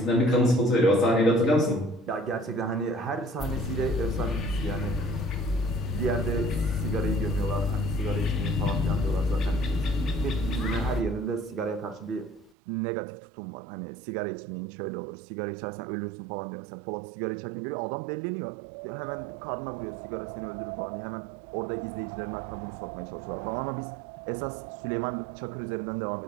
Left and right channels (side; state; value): left; drops out; at 12.5 s